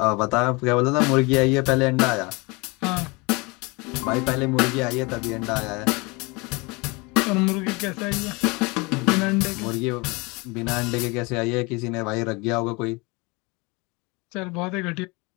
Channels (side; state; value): right; quieter; 26.7 dB